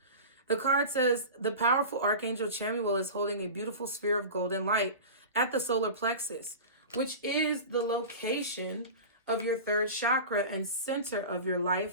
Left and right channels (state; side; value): inverted; both; correlation -0.32